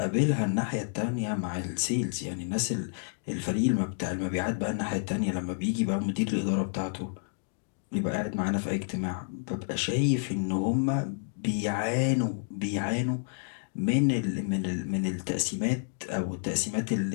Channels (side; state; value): right; silent; digital silence